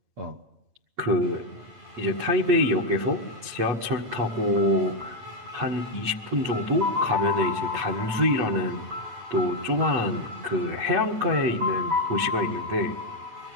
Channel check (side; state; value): left; late; 8.7 ms